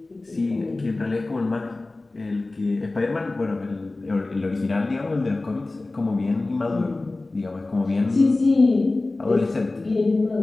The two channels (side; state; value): right; quieter; 3.1 dB